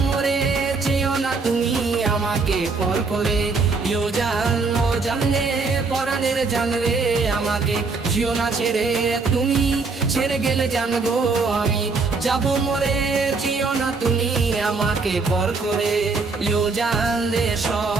মরে চেয়েও না তুমি আমাকে পর করে জানলে পরাণের জানলে আমাকে জিও না ছেড়ে তুমি ছেড়ে গেলে জানবো আমি যাব মরে চেয়েও না তুমি আমাকে পর করে জানলে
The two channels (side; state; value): left; quieter; 4.2 dB